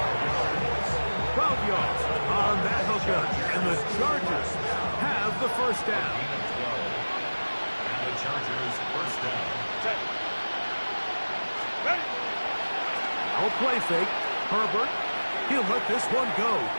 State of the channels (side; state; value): both; inverted; correlation -1.00